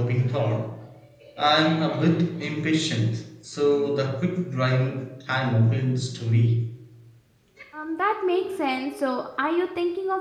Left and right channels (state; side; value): identical; both; correlation 1.00